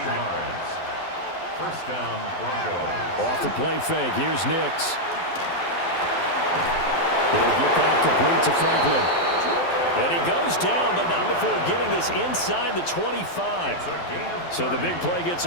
yards. First down, Broncos. Off the play fake. Here's Nix. He'll get that complete to Franklin. And he goes down, but not before getting this inside the 25. So the big play gets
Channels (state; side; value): late; right; 12 ms